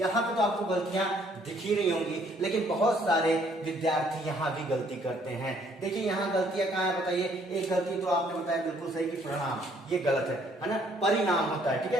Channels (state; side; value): normal; both; correlation 0.64